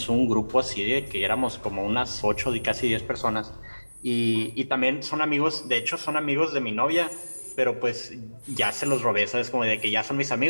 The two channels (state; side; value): inverted; both; correlation -1.00